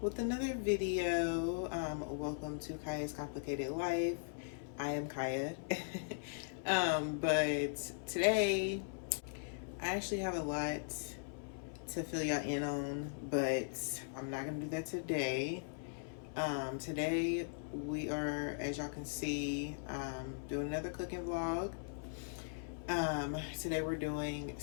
with another video. Welcome to Kya's Complicated Life. I am Kyia. But today I actually have a lot to fill y'all in on, but I'm not gonna do that today. Today we are, as y'all can see, doing another cooking vlog. Today we're doing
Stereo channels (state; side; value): silent; right; 52 dB below the other